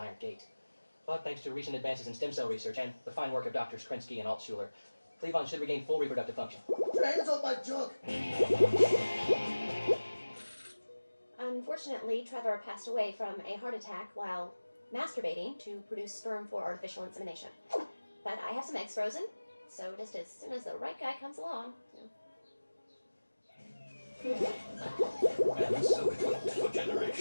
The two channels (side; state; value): both; inverted; correlation -1.00